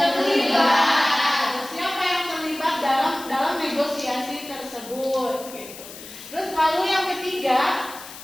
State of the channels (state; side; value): noise; left; hiss, 15 dB below the sound